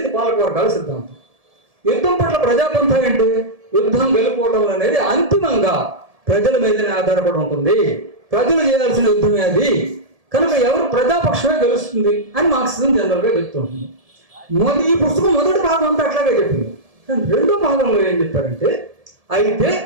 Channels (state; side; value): late; left; 1.7 ms